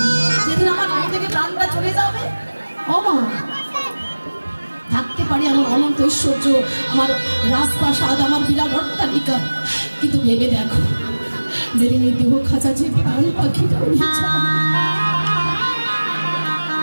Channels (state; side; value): inverted; both; correlation -1.00